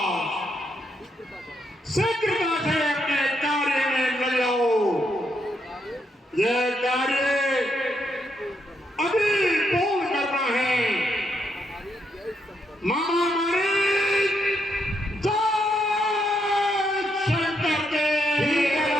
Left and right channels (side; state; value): both; normal; correlation 0.78